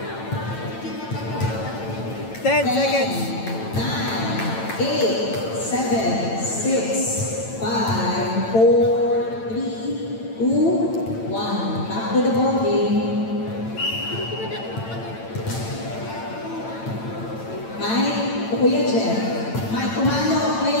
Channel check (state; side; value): late; right; 9.0 ms